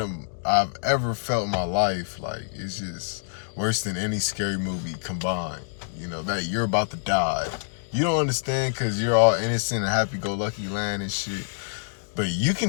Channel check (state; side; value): silent; right; digital silence